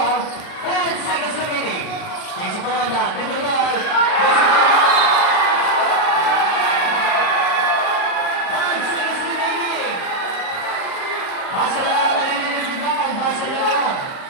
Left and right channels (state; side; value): late; right; 38 ms